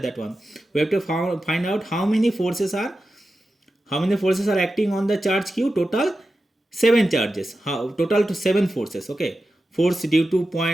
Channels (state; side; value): normal; both; correlation 0.92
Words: one. We have to find out how many forces are acting on the charge q. Total 7 charges. Total to 7 forces. Okay, force due to